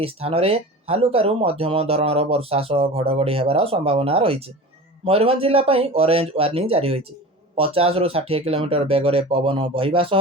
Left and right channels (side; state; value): both; normal; correlation 0.34